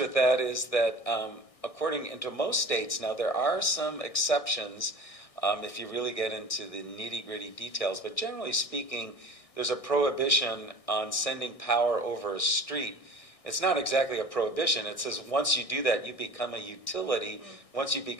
that is that according to most states, now there are some exceptions if you really get into the nitty-gritty details, but generally speaking, there's a prohibition on sending power over a street. It's not exactly a prohibition. It says once you do that, you become a utility. Once you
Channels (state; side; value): late; right; 1.6 ms